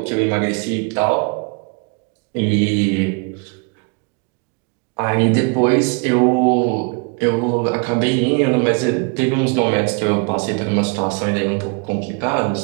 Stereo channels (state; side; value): quieter; left; 33.6 dB